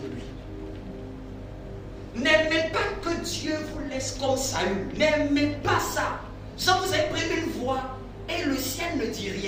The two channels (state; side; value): identical; both; correlation 1.00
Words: de lui. N'aimez pas que Dieu vous laisse comme Saül. N'aimez pas ça. Genre vous avez pris une voix et le ciel ne dit